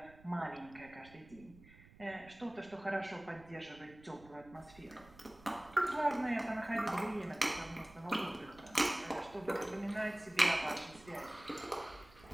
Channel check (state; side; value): noise; right; rumble, 22 dB below the sound